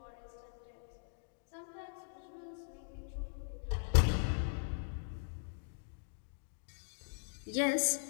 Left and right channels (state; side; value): silent; right; digital silence